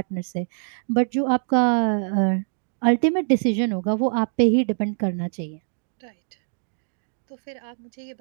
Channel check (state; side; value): silent; left; digital silence